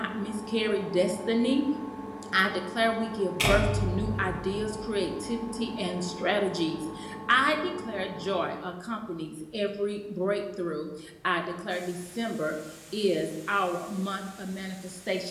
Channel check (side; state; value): both; identical; correlation 1.00